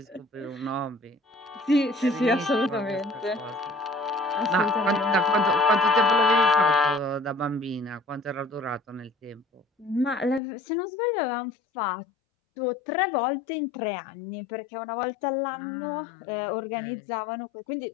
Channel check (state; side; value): drops out; right; at 10.4 s